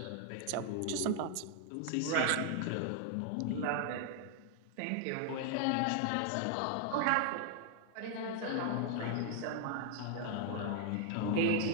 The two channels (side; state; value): both; different; correlation 0.00